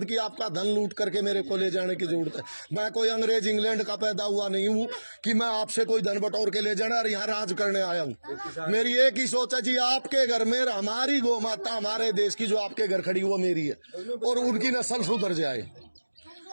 कि आपका धन लूट करके मेरे को ले जाने की जरूरत है। मैं कोई अंग्रेज इंग्लैंड का पैदा हुआ नहीं हूँ कि मैं आपसे कोई धन बटोर के ले जाना और यहाँ राज करने आया हूँ। मेरी एक ही सोच है जी, आपके घर में हमारी गौ माता, हमारे देश की जो आपके घर खड़ी वो मेरी है, और उनकी नस्ल सुधर जाए,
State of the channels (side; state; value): both; inverted; correlation -1.00